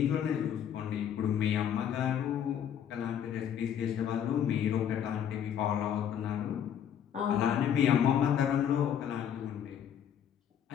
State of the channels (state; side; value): quieter; right; 9.2 dB